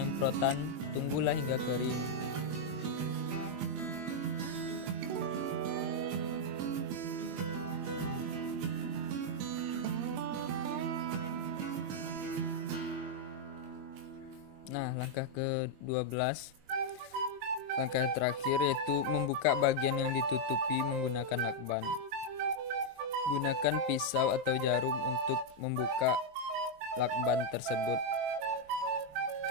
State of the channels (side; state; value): left; late; 21 ms